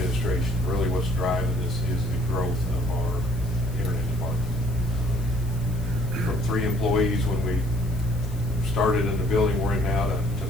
Really what's driving this is the growth of our internet department. From 3 employees when we started in the building we're in now to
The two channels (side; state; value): left; noise; hiss, 21 dB below the sound